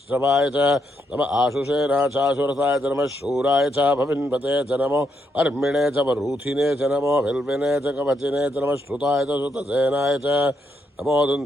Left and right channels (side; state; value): both; normal; correlation 0.78